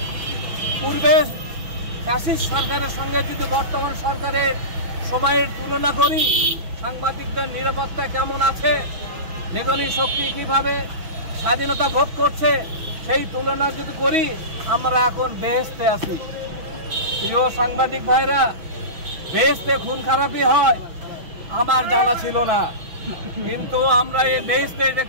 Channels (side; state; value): left; late; 6.2 ms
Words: পূর্বে ফ্যাসিস্ট সরকারের সঙ্গে যদি বর্তমান সরকারের সময়ের তুলনা করি, সাংবাদিকদের নিরাপত্তা কেমন আছে, লেখনী শক্তি কিভাবে স্বাধীনতা ভোগ করছে, সেই তুলনা যদি করি আমরা এখন বেহেশতে আছি। প্রিয় সাংবাদিক ভাইরা, বেহেশতে খুন খারাপি হয় আমার জানা ছিল না, কিন্তু আমরা এই বেহেশতে